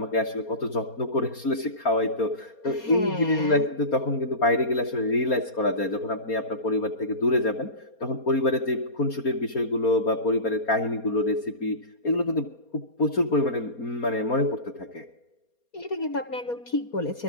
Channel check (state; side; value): late; right; 4.3 ms